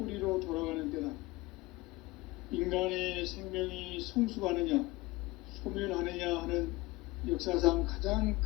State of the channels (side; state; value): right; quieter; 21.0 dB